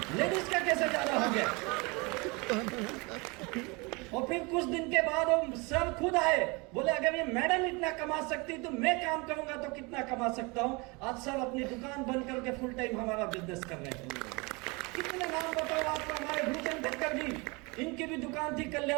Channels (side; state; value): left; quieter; 27.7 dB